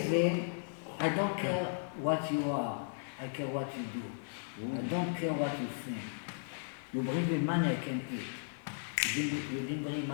I don't care what you are. I care what you do. I don't care what you think. You bring me money, I can eat. You didn't bring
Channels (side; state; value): right; silent; digital silence